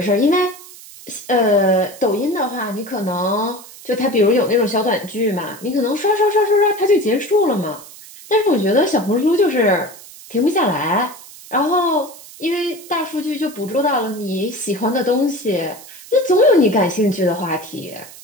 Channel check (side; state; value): right; noise; hiss, 18 dB below the sound